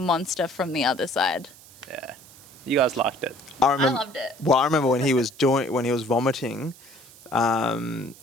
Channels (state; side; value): noise; right; hiss, 22 dB below the sound